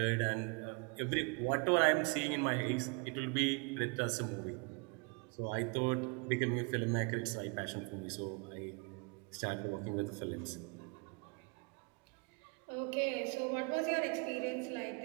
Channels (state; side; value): quieter; left; 33.1 dB